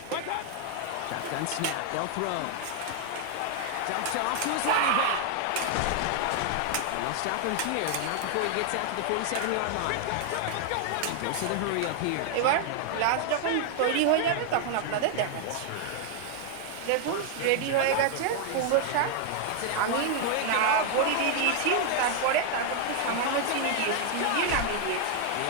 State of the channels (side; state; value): both; different; correlation 0.00